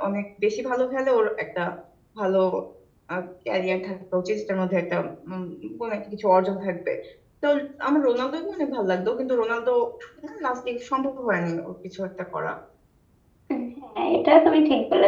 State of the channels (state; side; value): identical; both; correlation 1.00